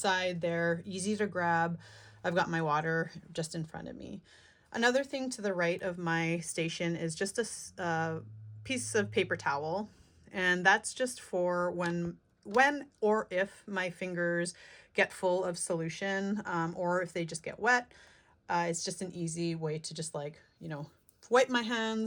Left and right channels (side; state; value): both; identical; correlation 1.00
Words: They're easy to grab. I've got my water just in front of me. Another thing to the right of my station is just a piece of paper towel, and that's just for when or if my fingers get full of solution, or if they just get wet. It's just an easy way to just wipe my